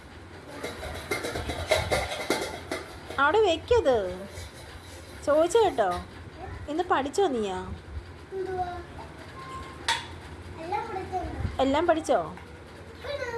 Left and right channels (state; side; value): identical; both; correlation 1.00